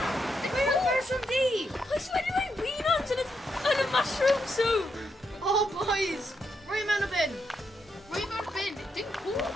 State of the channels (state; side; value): normal; both; correlation 0.81